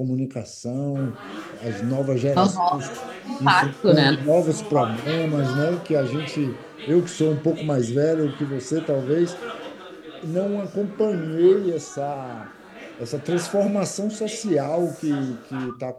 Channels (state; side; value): identical; both; correlation 1.00